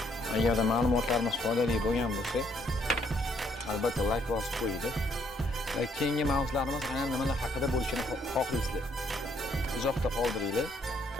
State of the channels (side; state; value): both; normal; correlation 0.69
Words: agarda ma'lumotlarimiz foydali bo'lgan bo'lsa, albatta like bosib qo'ying. Va keyingi mavzularimiz aynan nimalar haqida bo'lishini xohlaysizlar? Izohda qoldiringlar.